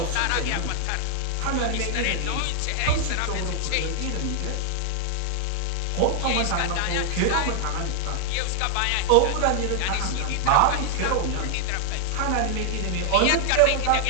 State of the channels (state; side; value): different; both; correlation 0.00